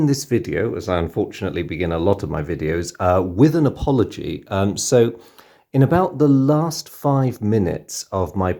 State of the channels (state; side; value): identical; both; correlation 1.00